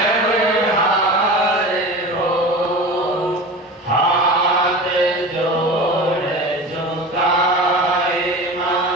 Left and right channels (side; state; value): both; normal; correlation 0.32